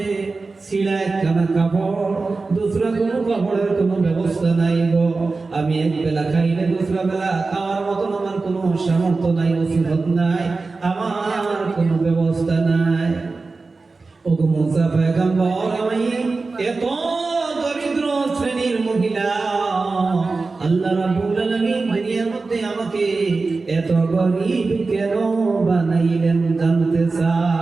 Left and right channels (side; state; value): left; quieter; 3.9 dB